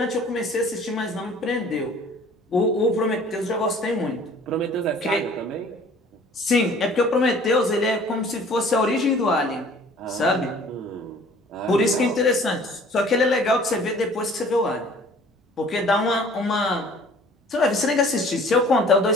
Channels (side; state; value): both; normal; correlation 0.51